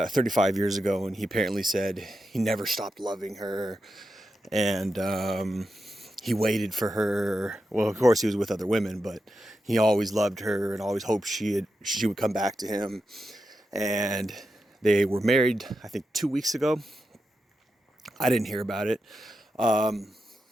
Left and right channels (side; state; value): both; normal; correlation 0.88